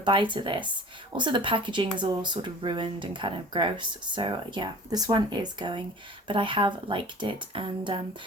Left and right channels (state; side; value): normal; both; correlation 0.44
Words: to this. Also, the packaging is all sort of ruined and kind of gross. So yeah, this one is going, but I have liked it, and